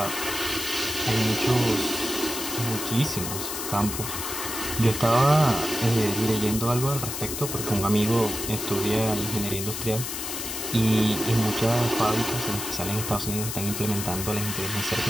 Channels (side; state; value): left; noise; hiss, 5 dB below the sound